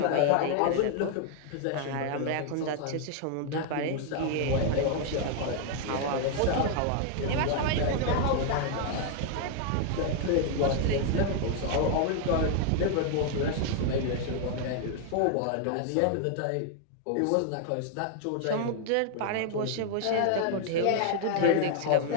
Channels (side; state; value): both; different; correlation 0.00